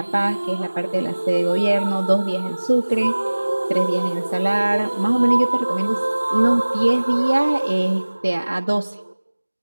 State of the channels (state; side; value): inverted; both; correlation -1.00